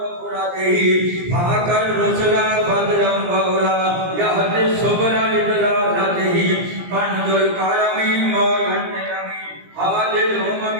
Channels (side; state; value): left; late; 17 ms